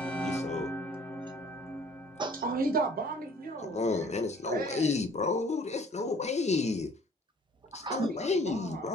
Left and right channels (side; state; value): both; normal; correlation 0.54